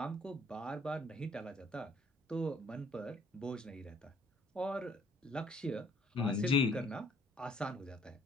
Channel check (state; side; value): normal; both; correlation 0.62